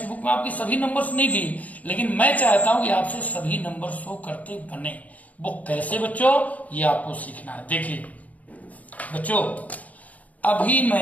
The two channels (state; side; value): late; right; 0.073 ms